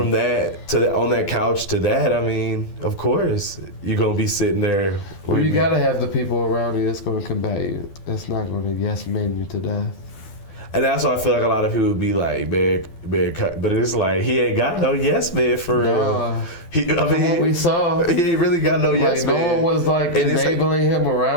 that to on that couch to that. I mean, of course, you're gonna be sitting there. Well, you gotta have the people around you that's gonna combat you. That's not gonna yes man you to death. And that's why I feel like a lot of people would be like, man, but it's like, he ain't got no yes man for real. What we saw, he ain't really got no yes man. No one was like enabling him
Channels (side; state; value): right; late; 12 ms